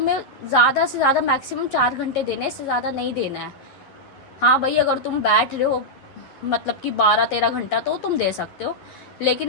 ज़्यादा से ज़्यादा मैक्सिमम 4 घंटे देने, इससे ज़्यादा नहीं देना है। हाँ भाई, अगर तुम बैठ रहे हो मतलब कि 12-13 घंटा तो तुम दे सकते हो,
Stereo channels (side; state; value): right; late; 11 ms